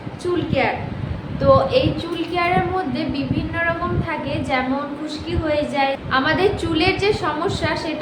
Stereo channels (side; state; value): both; identical; correlation 1.00